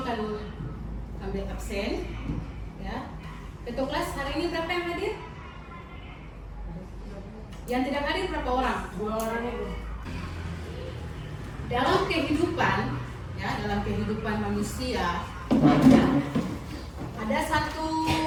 ambil absen, ya. Ketua Kelas hari ini berapa yang hadir? Yang tidak hadir berapa orang? 2 orang Ibu. Dalam kehidupan, ya, dalam kehidupan manusia, ya, ada satu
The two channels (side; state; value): both; identical; correlation 1.00